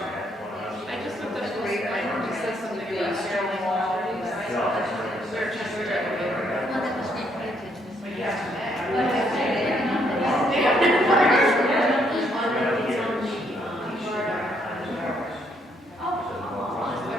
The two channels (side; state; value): both; normal; correlation 0.72